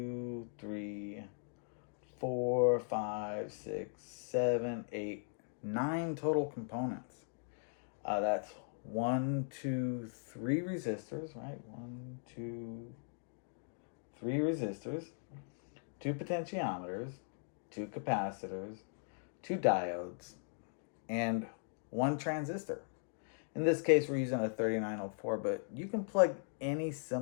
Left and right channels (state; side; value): silent; right; digital silence